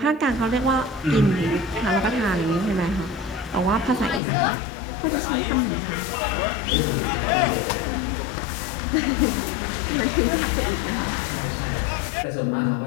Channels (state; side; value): drops out; right; at 4.2 s